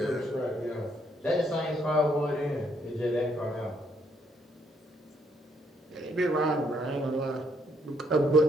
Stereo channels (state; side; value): normal; both; correlation 0.71